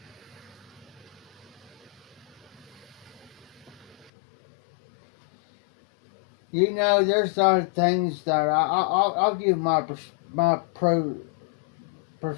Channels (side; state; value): right; drops out; at 4.1 s